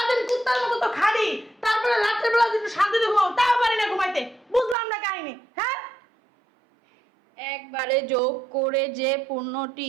কুত্তার মতো তো খাড়ি, তারপরে রাত্রের বেলা যদি শান্তিতে ঘুমাও তাও পারি না ঘুমাইতে। বুঝলাম না কাহিনী। হ্যাঁ, একবারে যোগ করে যে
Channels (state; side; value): drops out; left; at 4.8 s